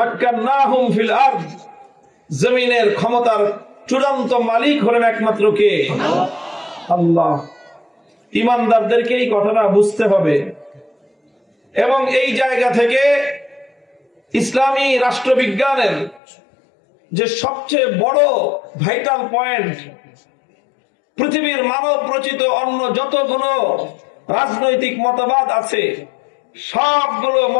ফিল আরদ, জমিনের ক্ষমতার চূড়ান্ত মালিক হলেন একমাত্র কে? আল্লাহ। ঈমানদারদেরকে এই কথাটা বুঝতে হবে এবং এই জায়গা থেকে ইসলামী রাষ্ট্রবিজ্ঞানের যে সবচেয়ে বড় ভাইটাল পয়েন্ট, পৃথিবীর মানব রচিত অন্য যতগুলো রাজনৈতিক মতবাদ আছে সবগুলো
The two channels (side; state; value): right; drops out; at 16.2 s